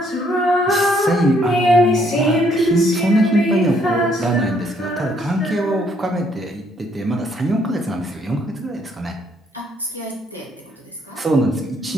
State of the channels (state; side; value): normal; both; correlation 0.68